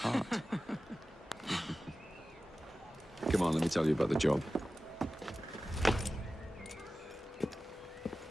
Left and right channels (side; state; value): both; normal; correlation 0.95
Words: Come on, let me tell you about the job.